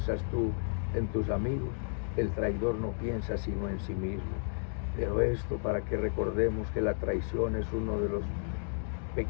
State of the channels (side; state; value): right; silent; 55 dB below the other